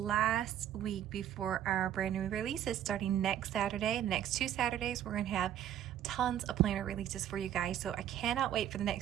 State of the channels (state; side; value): quieter; left; 10.9 dB